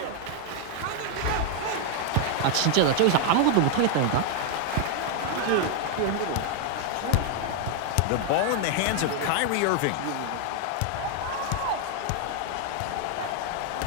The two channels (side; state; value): both; different; correlation 0.00